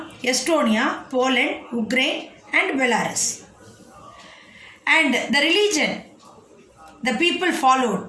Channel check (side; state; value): both; identical; correlation 1.00